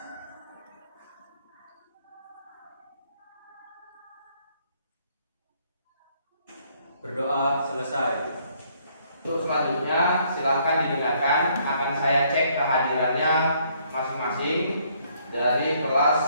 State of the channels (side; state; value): both; inverted; correlation -0.67